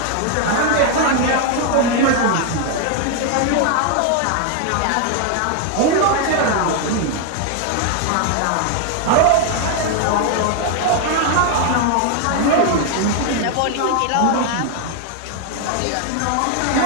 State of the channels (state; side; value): different; both; correlation 0.00